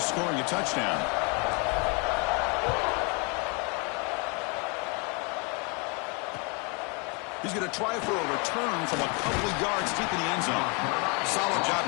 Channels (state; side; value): quieter; right; 32.2 dB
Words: scoring a touchdown. He's going to try for a return from a couple of yards deep in the end zone. Solid job